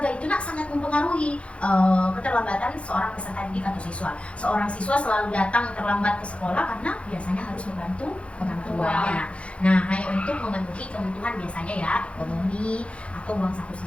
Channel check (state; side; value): late; right; 0.061 ms